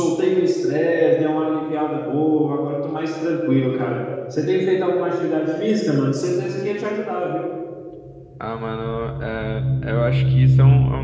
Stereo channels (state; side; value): identical; both; correlation 1.00